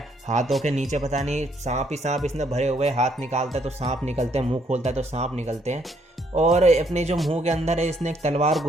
हाथों के नीचे पता नहीं सांप ही सांप इसने भरे हुए, हाथ निकालता है तो सांप निकलते हैं, मुंह खोलता है तो सांप निकलते हैं। और अपने जो मुंह के अंदर है इसने एक तलवार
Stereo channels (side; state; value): both; normal; correlation 0.69